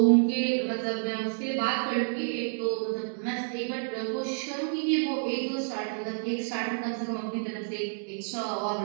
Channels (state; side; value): silent; left; digital silence